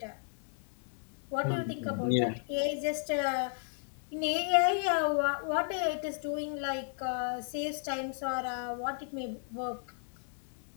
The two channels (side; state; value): right; silent; digital silence